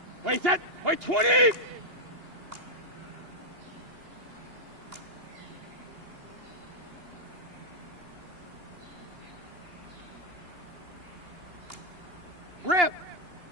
Wait, set. Wait, 20! Rip!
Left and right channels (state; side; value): late; left; 2.8 ms